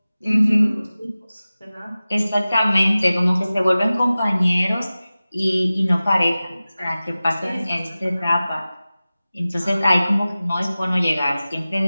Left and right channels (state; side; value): inverted; both; correlation -0.97